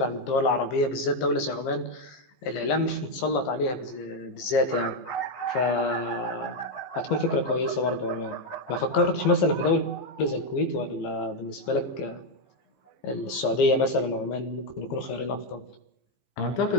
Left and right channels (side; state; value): right; late; 15 ms